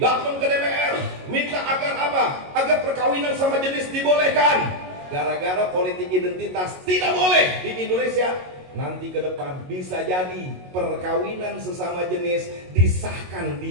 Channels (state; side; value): late; left; 22 ms